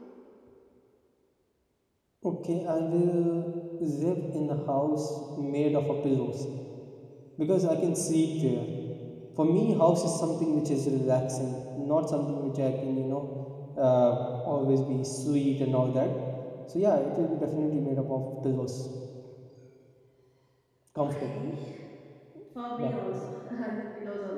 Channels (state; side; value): identical; both; correlation 1.00